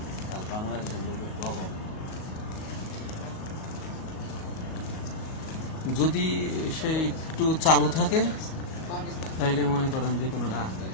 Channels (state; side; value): late; right; 38 ms